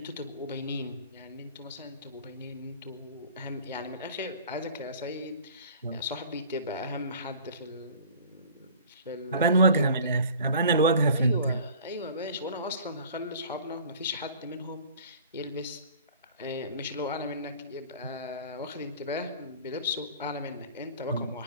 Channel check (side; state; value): both; inverted; correlation -0.46